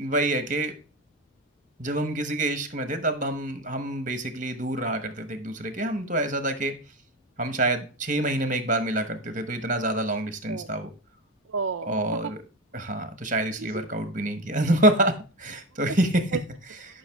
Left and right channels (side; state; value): both; normal; correlation 0.21